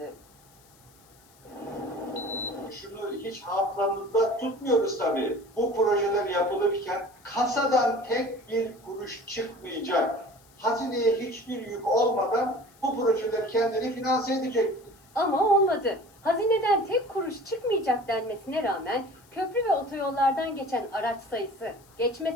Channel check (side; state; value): left; noise; hiss, 28 dB below the sound